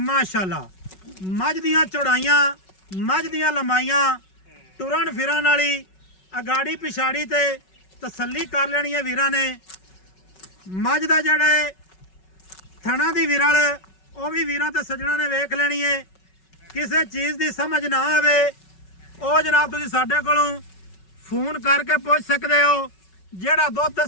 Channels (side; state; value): right; late; 5.3 ms